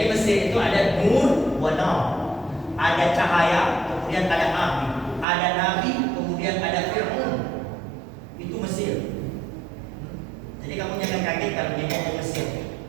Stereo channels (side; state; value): left; drops out; at 5.2 s